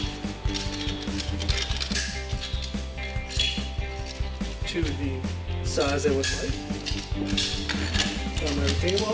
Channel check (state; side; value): identical; both; correlation 1.00